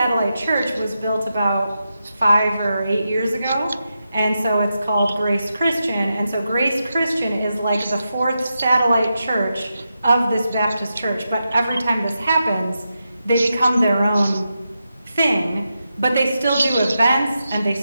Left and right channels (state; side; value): inverted; both; correlation -0.88